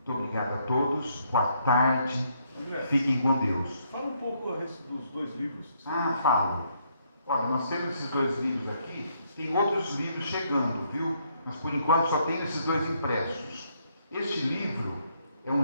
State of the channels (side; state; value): both; inverted; correlation -0.72